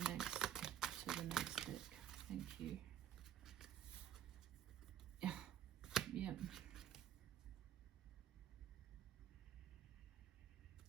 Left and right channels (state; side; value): quieter; left; 10.5 dB